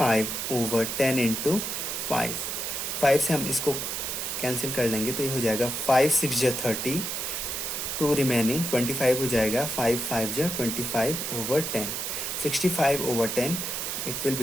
over 10 into 5. 5 से हम इसको कैंसिल कर लेंगे तो ये हो जाएगा 5 6 जा 30, 2 रिमेनिंग 25 हो जाएगा, 5 5 जा 25 over 10, 65 over 10. It will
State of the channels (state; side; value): noise; right; hiss, 3 dB below the sound